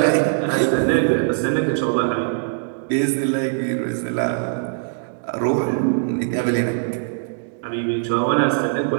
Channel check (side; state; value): left; silent; digital silence